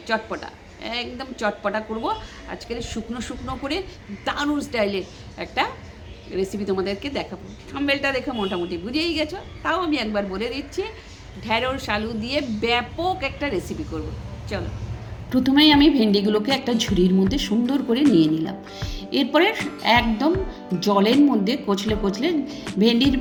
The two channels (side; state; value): both; identical; correlation 1.00